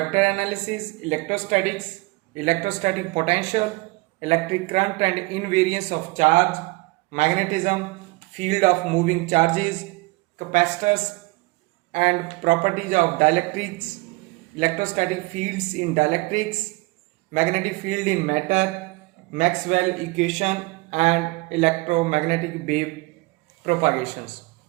analysis, electrostatics, electrostatic potential, electric current and invariance of charge, magnetism, field of moving charges, capacitors and properties of dielectrics, electrostatic fields in dielectrics, magnetic field in matter, Maxwell equation and electromagnetic wave propagations.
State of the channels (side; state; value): left; quieter; 23.8 dB